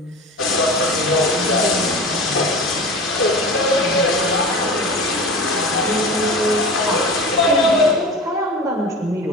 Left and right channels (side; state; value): both; normal; correlation 0.33